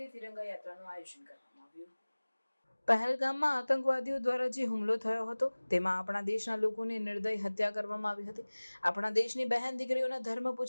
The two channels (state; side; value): inverted; both; correlation -1.00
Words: તિરંગા યાત્રાનું આયોજન કરવામાં આવ્યું। પહેલગામમાં આતંકવાદીઓ દ્વારા જે હુમલો થયો હતો તેમાં આપણા દેશના લોકોની નિર્દય હત્યા કરવામાં આવી હતી। આપણા દેશની બહેન દીકરીઓના ધર્મ